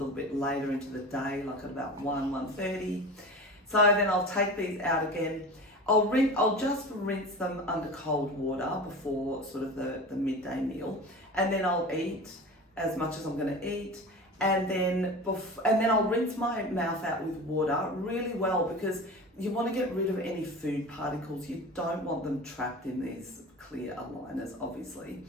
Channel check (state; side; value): normal; both; correlation 0.33